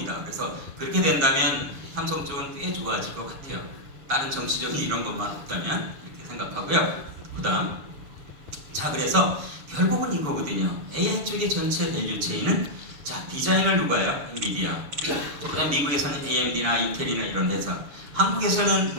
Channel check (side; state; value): left; late; 7.0 ms